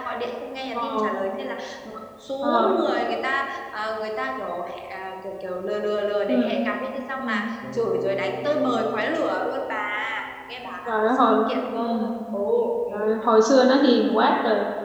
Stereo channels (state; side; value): identical; both; correlation 1.00